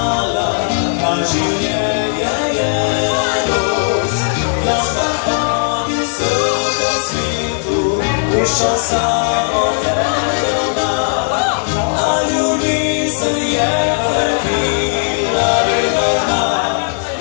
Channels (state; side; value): silent; right; 64 dB below the other